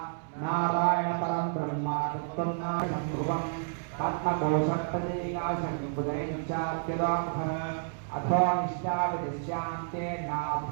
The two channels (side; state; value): left; silent; 58 dB below the other